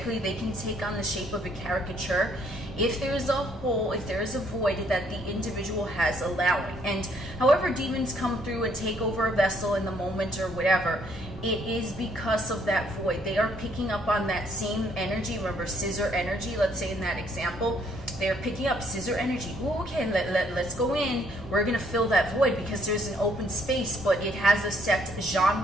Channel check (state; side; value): normal; both; correlation 0.67